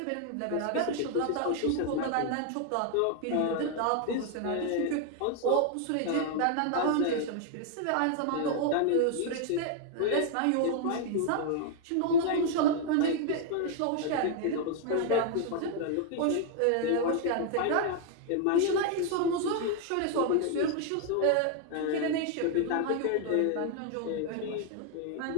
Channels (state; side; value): different; both; correlation 0.00